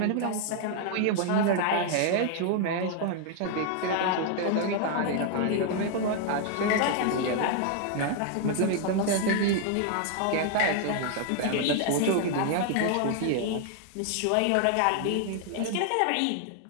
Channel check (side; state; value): both; different; correlation 0.00